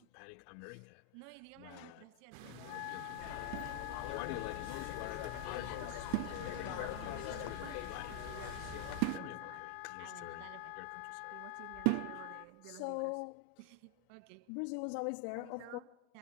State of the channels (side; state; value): both; different; correlation 0.00